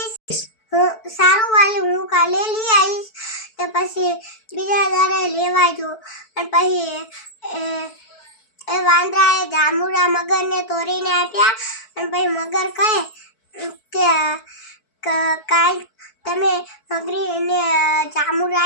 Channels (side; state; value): right; late; 4.6 ms